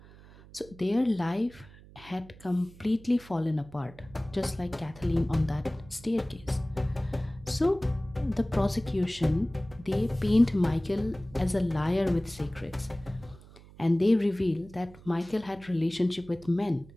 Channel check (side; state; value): right; noise; hum, 21 dB below the sound